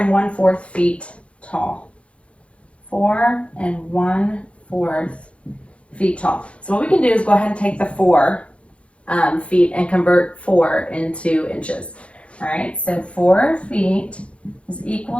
feet tall. 4 1/4 feet tall. So what we can do is go ahead and take the 4 feet and convert 4 into inches. All right, so 4 feet is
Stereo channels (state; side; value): late; right; 0.061 ms